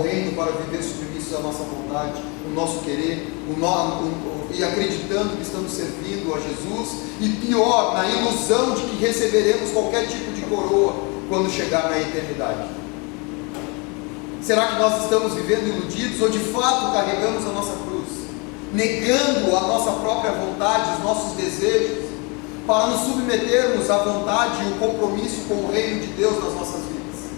reino para viver submissos à nossa vontade, o nosso querer, e acreditando que estamos servindo a Jesus, e pior, na ilusão de que receberemos qualquer tipo de coroa quando chegar na eternidade. Será que nós estamos vivendo iludidos, ou de fato carregamos a nossa cruz, negando a nossa própria vontade, os nossos desejos, para nos submetermos à vontade e o compromisso com o reino de Deus nas nossas vidas?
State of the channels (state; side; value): quieter; right; 30.7 dB